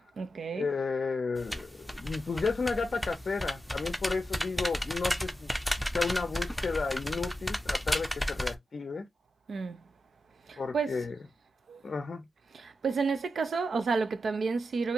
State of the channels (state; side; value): normal; both; correlation 0.89